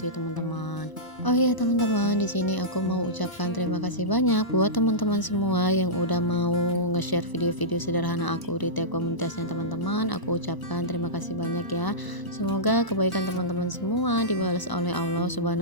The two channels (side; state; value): right; late; 1.0 ms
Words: ya teman-teman. Oh iya teman-teman, di sini aku mau ucapkan terima kasih banyak buat teman-teman semua yang udah mau nge-share video-video sederhana aku di tab komunitasnya teman-teman. Aku ucapkan terima kasih banyak ya. Semoga kebaikan teman-teman semua dibalas oleh Allah